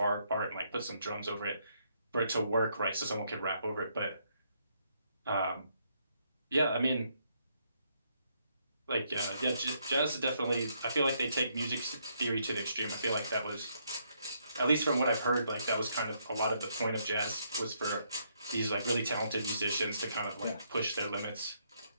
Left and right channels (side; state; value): both; inverted; correlation -0.74